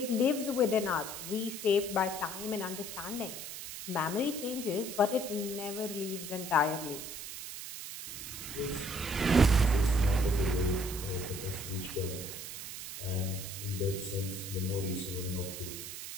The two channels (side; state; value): right; noise; hiss, 8 dB below the sound